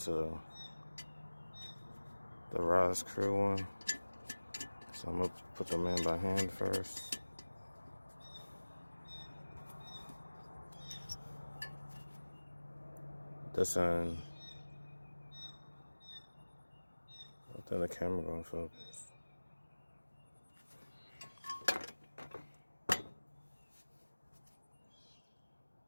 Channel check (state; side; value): inverted; both; correlation -1.00